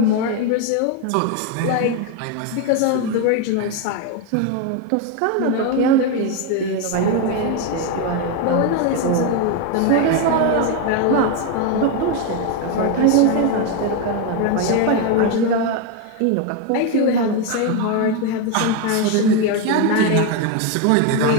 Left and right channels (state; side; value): different; both; correlation 0.02